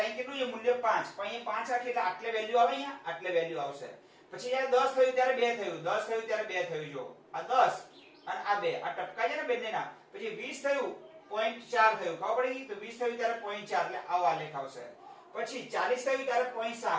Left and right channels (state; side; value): identical; both; correlation 1.00